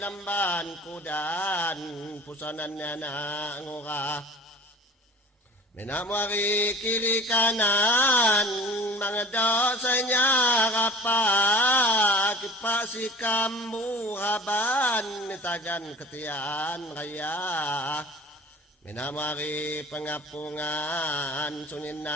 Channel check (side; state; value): both; normal; correlation 0.42